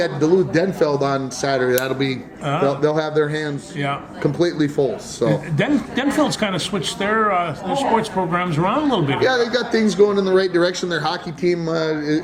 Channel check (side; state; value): both; identical; correlation 1.00